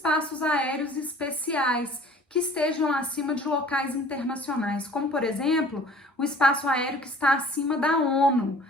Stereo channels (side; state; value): both; normal; correlation 0.49